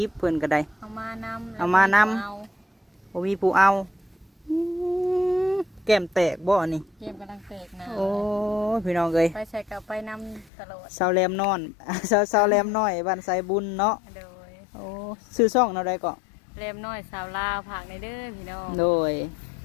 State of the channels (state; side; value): drops out; right; at 10.5 s